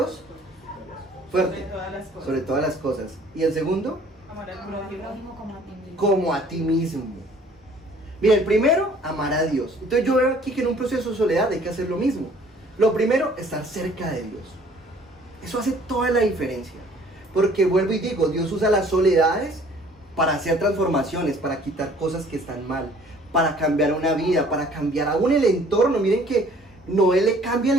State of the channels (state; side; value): normal; both; correlation 0.55